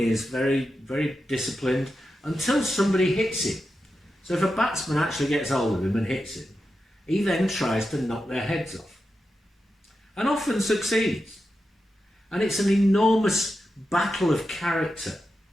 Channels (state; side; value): normal; both; correlation 0.89